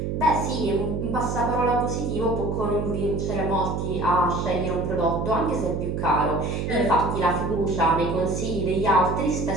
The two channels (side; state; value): right; noise; hum, 2 dB below the sound